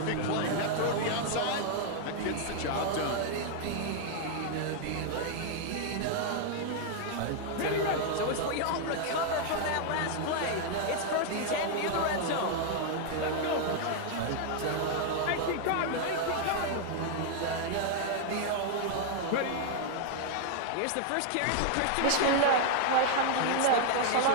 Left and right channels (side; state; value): both; different; correlation 0.00